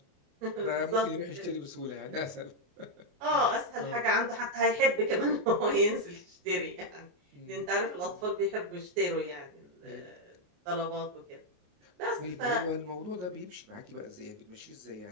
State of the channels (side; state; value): left; late; 28 ms